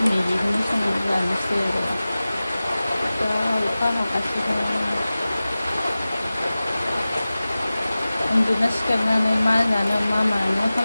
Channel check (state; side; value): inverted; both; correlation -0.97